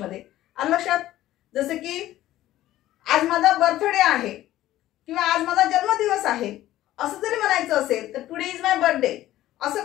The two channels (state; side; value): quieter; right; 14.5 dB